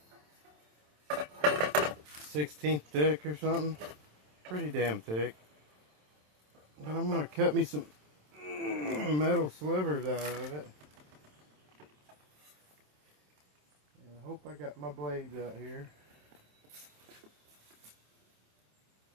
1/16 thick or something. Pretty damn thick. But I'm going to cut me some metal slivers out of it. And I hope I got my blades out here.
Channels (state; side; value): late; left; 27 ms